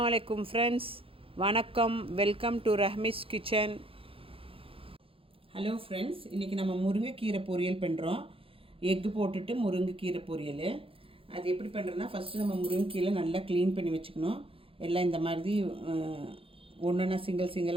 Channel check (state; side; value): late; left; 0.27 ms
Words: அலைக்கும் ஃப்ரெண்ட்ஸ், வணக்கம். Welcome to Rahmi's kitchen. Hello friends, இன்றைக்கி நம்ம முருங்கைக்கீரை பொரியல் பண்ணுறோம். எக்கு போட்டுட்டு முருங்கைக்கீரை பொரியல். அது எப்படி பண்ணுறதுனா, ஃபஸ்ட்டு நம்ம முருங்கைக்கீரை நல்லா க்ளீன் பண்ணி வச்சுக்கணும். எல்லாம் இந்த மாதிரி ஒன்றுனா